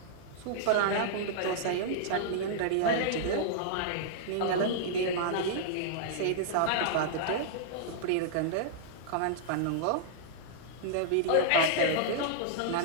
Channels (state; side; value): different; both; correlation -0.02